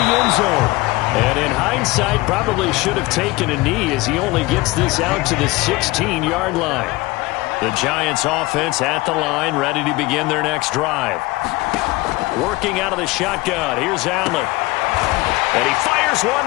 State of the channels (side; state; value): right; quieter; 21.3 dB